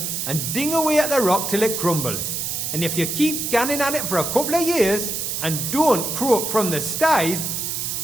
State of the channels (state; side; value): noise; right; hiss, 3 dB below the sound